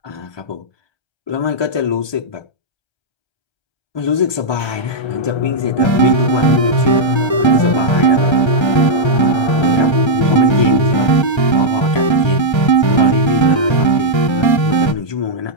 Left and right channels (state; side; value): late; right; 1.3 ms